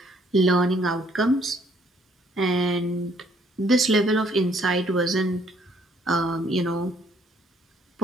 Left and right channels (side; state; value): both; normal; correlation 0.64